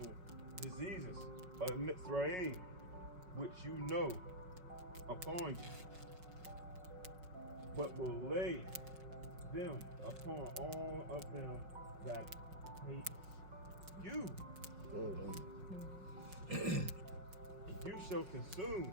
diseases of Mitzrayim, which you know, upon you, but will lay them upon all of them that hate you. And you shall consume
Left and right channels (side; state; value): left; late; 5.4 ms